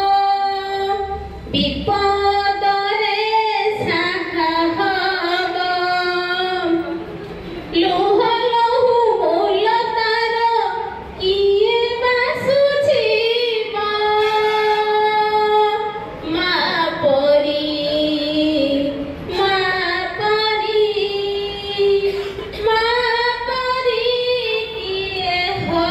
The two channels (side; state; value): both; identical; correlation 1.00